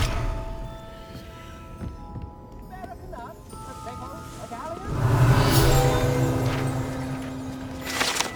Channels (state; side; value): identical; both; correlation 1.00